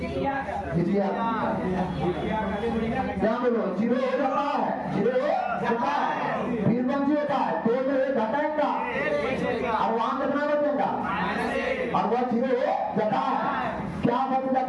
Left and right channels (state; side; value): identical; both; correlation 1.00